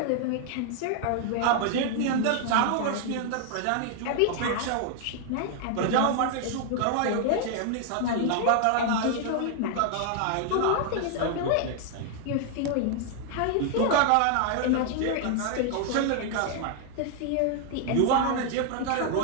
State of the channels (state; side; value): different; both; correlation 0.00